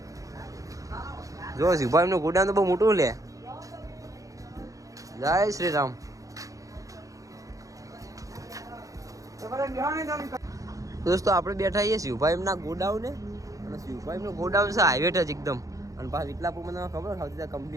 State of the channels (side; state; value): left; late; 0.16 ms